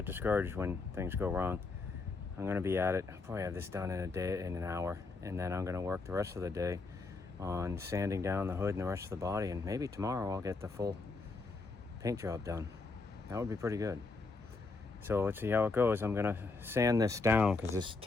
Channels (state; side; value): quieter; right; 3.8 dB